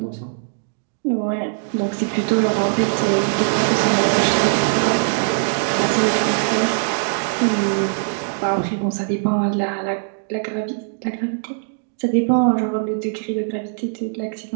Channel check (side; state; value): left; silent; digital silence